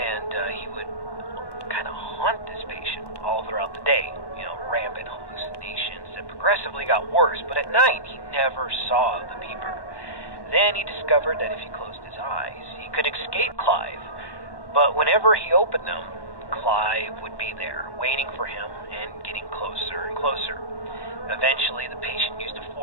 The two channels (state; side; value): late; right; 1.1 ms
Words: he would kind of haunt this patient all throughout the day. Rampant hallucinations that progressively got worse, but at night he never saw the peeper. Then he discovered that if he closed his eyes, he could escape Clive, but whenever he opened them, Clive would be there, waiting for him and getting closer and closer. Eventually, the patient used a